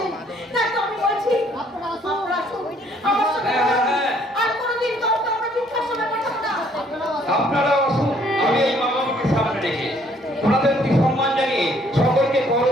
বলছি আপনারা আসুন আমার সঙ্গে, আর কোনোদিন কাউকে আমরা বৃদ্ধাশ্রমে পাঠাবো না। আপনারা আসুন, আমি এই মা বাবাকে সামনে রেখে ওনাদের প্রতি সম্মান জানিয়ে সকল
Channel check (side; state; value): both; normal; correlation 0.63